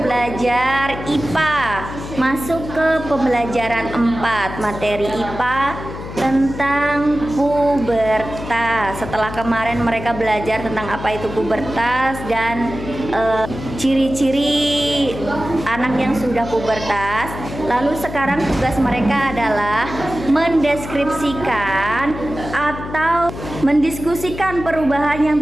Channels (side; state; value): left; noise; hum, 10 dB below the sound